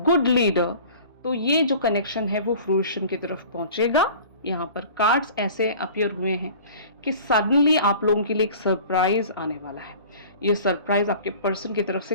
leader, तो ये जो कनेक्शन है वो फ्रूइशन की तरफ पहुंचेगा। यहाँ पर कार्ड्स ऐसे अपीयर हुए हैं कि सडनली आप लोगों के लिए एक सरप्राइज आने वाला है। ये सरप्राइज आपके पर्सन की तरफ से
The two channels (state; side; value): inverted; both; correlation -0.44